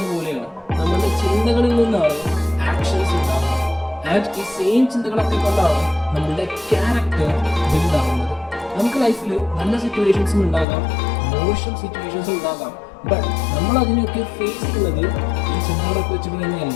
പോലെയാണ് നമ്മളുടെ ചിന്തകളിൽ നിന്നാണ് ആക്ഷൻസ് ഉണ്ടാകുന്നത്. ആൻഡ് ഈ സെയിം ചിന്തകളൊക്കെ കൊണ്ടാണ് നമ്മളുടെ ക്യാരക്ടർ ബിൽഡ് ആവുന്നത്. നമുക്ക് ലൈഫിൽ നല്ല സിറ്റുവേഷൻസും ഉണ്ടാകാം, മോശം സിറ്റുവേഷൻസും ഉണ്ടാകാം. ബട്ട് നമ്മൾ അതിനെയൊക്കെ ഫേസ് ചെയ്യുന്നത് ഈ ചിന്തകളൊക്കെ വെച്ചിട്ട്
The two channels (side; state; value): right; drops out; at 10.7 s